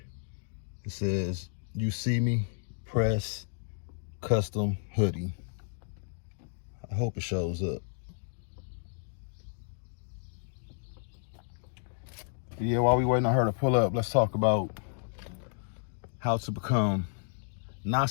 It says YOUCME Press custom hoodie. I hope it shows up. But yeah, while we waiting on her to pull up, let's talk about how to become not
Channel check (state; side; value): silent; right; digital silence